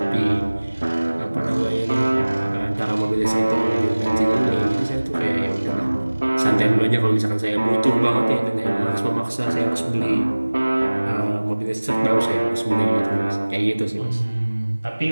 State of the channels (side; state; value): both; inverted; correlation -1.00